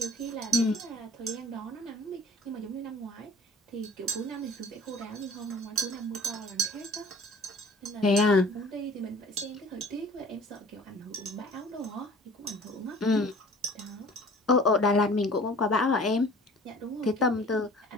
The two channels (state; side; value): normal; both; correlation 0.47